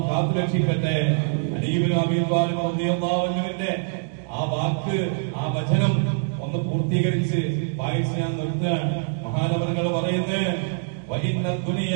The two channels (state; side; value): silent; left; digital silence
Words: കാത്തുരക്ഷിക്കട്ടെ. അലി ഇബ്നു അബീ ത്വാലിബ് റളിയല്ലാഹു അൻഹുവിന്റെ ആ വാക്ക്, ആ വചനം ഒന്ന് പൂർത്തീകരിച്ച് വായിച്ച് ഞാൻ നിർത്തുകയാണ്. മഹാനവറുകൾ പറയുന്നത്, وَإِنَّ